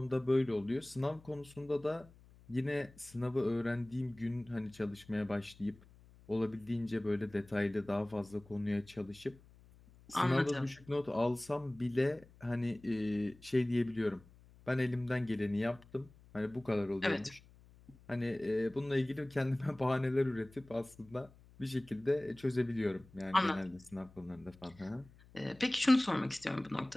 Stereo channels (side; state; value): left; noise; hum, 24 dB below the sound